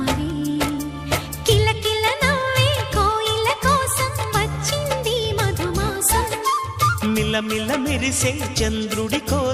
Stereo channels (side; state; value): both; identical; correlation 1.00